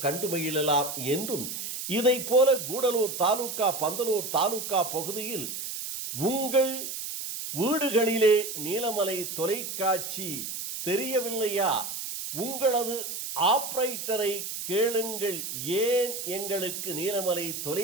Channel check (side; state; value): right; noise; hiss, 6 dB below the sound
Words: கண்டு மகிழலாம் என்றும், இதை போல கூடலூர் தாலுகா பந்தலூர் தாலுகா பகுதியில் உங்கள் வீடுகளிலே நீலமலை தொலைக்காட்சி தெரியவில்லையா, உங்களது ஆபரேட்டரை கேளுங்கள், ஏன் எங்களுக்கு நீலமலை